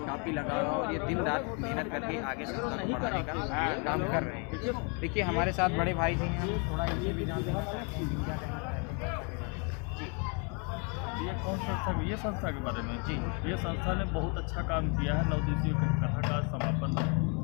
काफ़ी लगाव है और ये दिन रात मेहनत करके आगे संस्था को बढ़ाने का काम कर रहे हैं। देखिए हमारे साथ बड़े भाई जी हैं, हम थोड़ा इनसे भी जानते हैं। ये कौन संस्था? ये संस्था के बारे में जी, ये संस्था ने बहुत अच्छा काम किया है। 9 दिवसीय कथा का समापन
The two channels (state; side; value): quieter; right; 35.4 dB